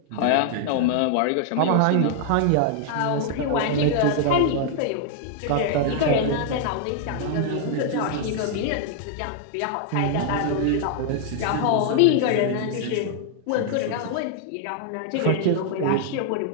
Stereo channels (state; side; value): different; both; correlation 0.00